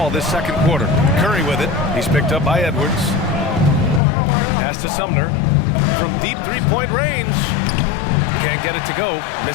this second quarter. Curry with it. He's picked up by Edwards. Pass to Sumner from deep three-point range. Can't get it to go.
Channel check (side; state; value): right; drops out; at 4.0 s